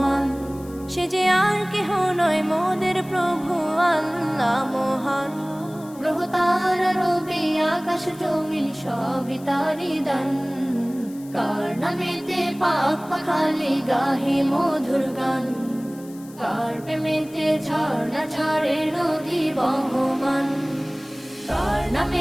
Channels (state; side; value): noise; left; hiss, 23 dB below the sound